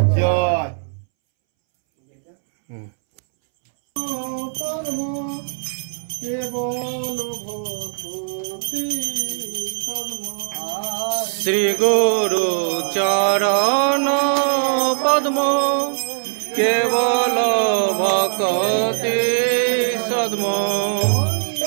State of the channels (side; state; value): left; silent; 66 dB below the other